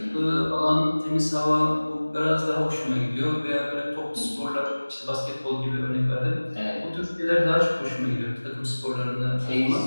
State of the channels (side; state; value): both; inverted; correlation -1.00